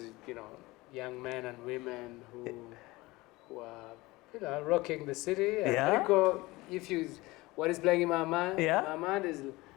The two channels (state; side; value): quieter; right; 21.0 dB